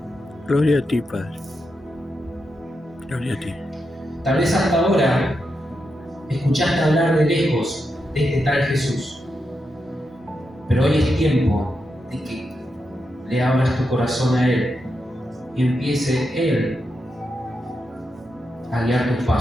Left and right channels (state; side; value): normal; both; correlation 0.86